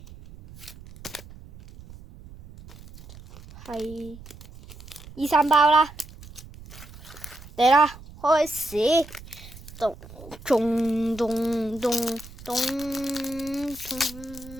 係2、3包啦！嚟啦，開始！咚咚咚咚咚咚咚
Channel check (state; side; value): noise; right; rumble, 18 dB below the sound